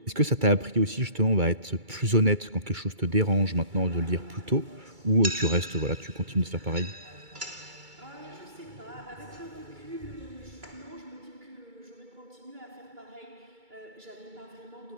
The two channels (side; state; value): left; late; 2.3 ms